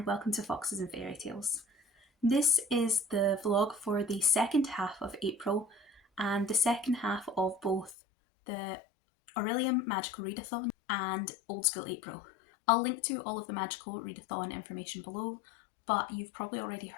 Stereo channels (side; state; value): right; drops out; at 8.0 s